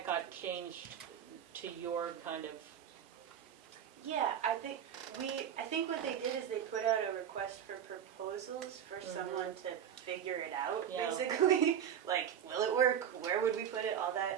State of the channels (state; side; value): quieter; left; 9.1 dB